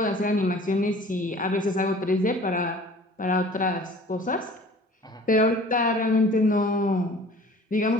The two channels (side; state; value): both; normal; correlation 0.47